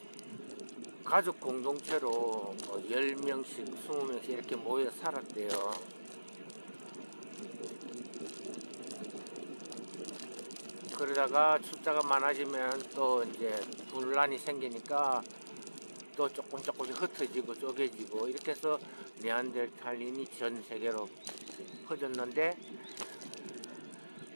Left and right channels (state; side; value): inverted; both; correlation -1.00